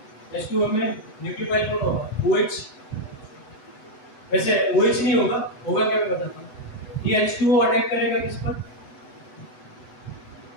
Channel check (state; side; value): late; right; 8.0 ms